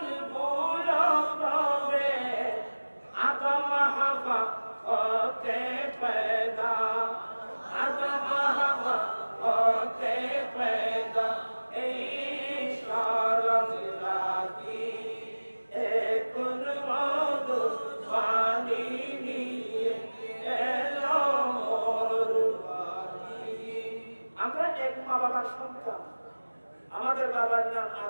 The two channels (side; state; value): both; inverted; correlation -1.00